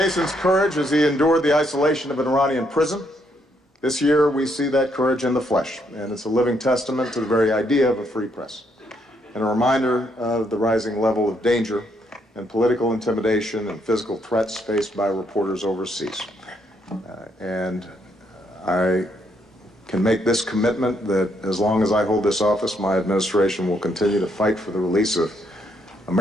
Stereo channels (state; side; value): normal; both; correlation 0.74